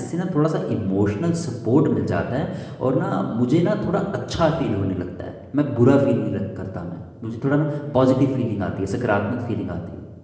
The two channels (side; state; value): both; identical; correlation 1.00